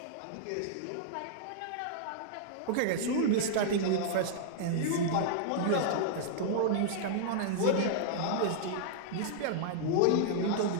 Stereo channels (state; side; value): different; both; correlation -0.01